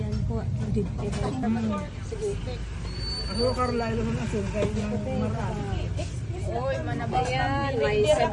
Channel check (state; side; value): identical; both; correlation 1.00